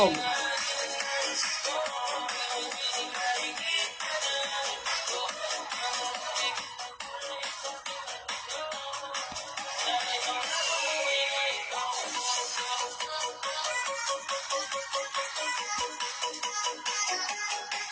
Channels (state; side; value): identical; both; correlation 1.00